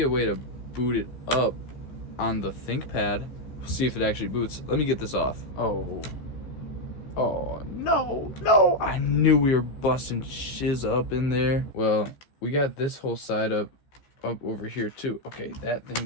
a way to boot it up on the ThinkPad. See if it actually boots. Let me get this off. Oh. Oh, no. I knew we were busting shiz up in there. Well, we got this whole side up over here too. Okay, that thing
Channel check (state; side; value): late; right; 14 ms